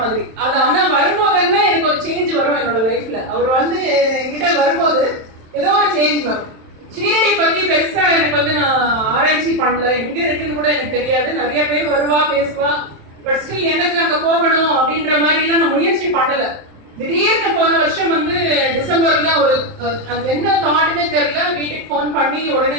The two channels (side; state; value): left; late; 27 ms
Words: மாதிரி. அது ஆனா வரும்போதுன்னா எனக்கு ஒரு சேஞ்ச் வரும் என்னோட லைஃப்ல. அவர் வந்து என்கிட்ட வரும்போது ஏதோ ஒரு சேஞ்ச் வரும். ஷீரடி பத்தி பெருசா எனக்கு வந்து நான் ஆராய்ச்சி பண்ணல, எங்க இருக்குன்னு கூட எனக்கு தெரியாது. நிறைய பேர் வருவா பேசுவா, பட் ஸ்டில் எனக்கு அங்க போகணும் அப்படின்ற மாதிரி எல்லாம் நான் முயற்சி பண்ணல. திடீர்னு போன வருஷம் வந்து டிசம்பர்ல ஒரு அது என்ன தாட்டுமே தெரியல, வீட்டுக்கு போன் பண்ணி